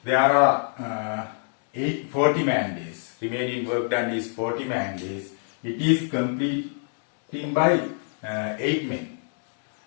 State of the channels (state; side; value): silent; right; 61 dB below the other